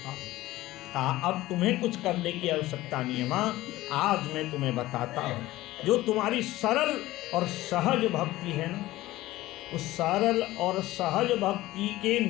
हूं। कहा अब तुम्हें कुछ करने की आवश्यकता नहीं है मां, आज मैं तुम्हें बताता हूं जो तुम्हारी सरल और सहज भक्ति है ना, उस सरल और सहज भक्ति के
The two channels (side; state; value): right; quieter; 17.0 dB